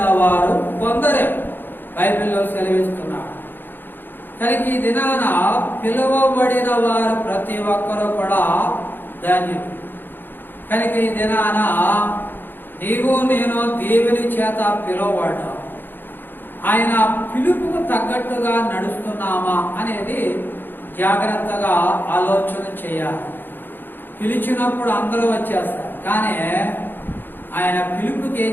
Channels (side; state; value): right; late; 0.095 ms